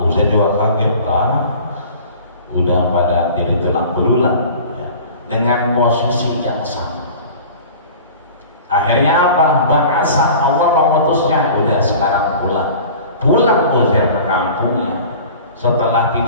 Uzair juga kaget lah, udah pada jadi tulang belulang ya, dengan posisi yang sama. Akhirnya apa? Bahasa Allah mengutusnya, udah sekarang pulang Uzair ke kampungnya. Setelah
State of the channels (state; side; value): inverted; both; correlation -0.42